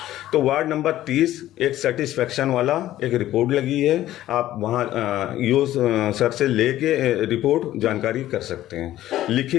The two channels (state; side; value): quieter; right; 13.9 dB